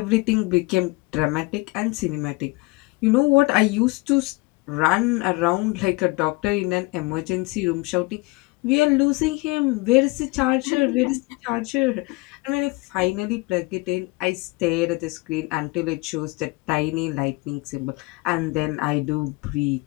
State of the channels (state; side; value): quieter; right; 24.6 dB